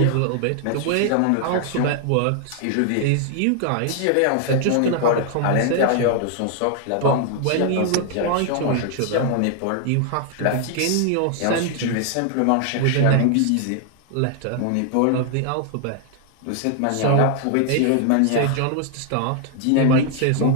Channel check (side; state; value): both; different; correlation 0.00